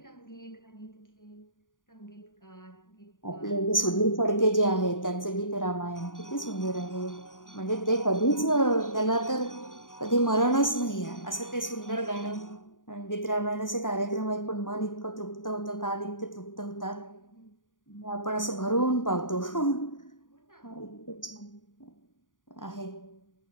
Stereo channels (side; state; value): right; late; 0.89 ms